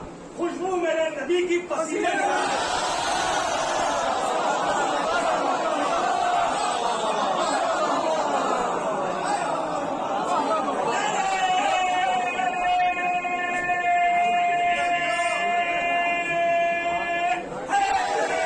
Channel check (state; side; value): identical; both; correlation 1.00